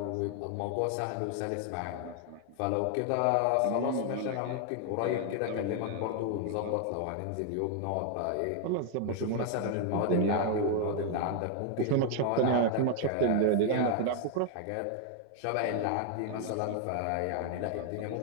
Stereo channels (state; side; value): different; both; correlation 0.00